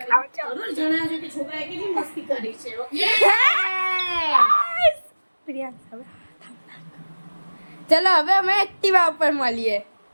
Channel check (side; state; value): both; inverted; correlation -1.00